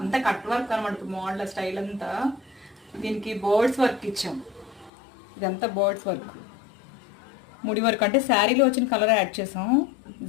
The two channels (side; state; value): right; drops out; at 4.9 s